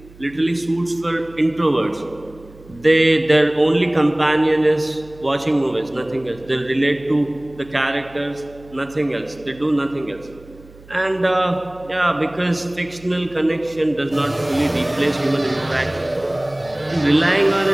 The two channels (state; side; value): noise; right; hum, 23 dB below the sound